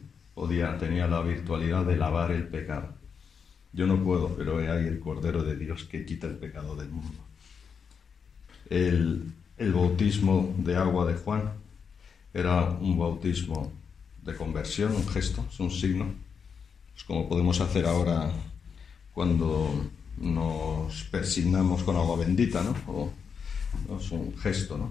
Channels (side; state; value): right; quieter; 6.3 dB